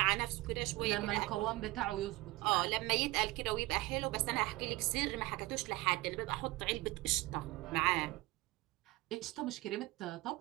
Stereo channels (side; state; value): left; quieter; 20.7 dB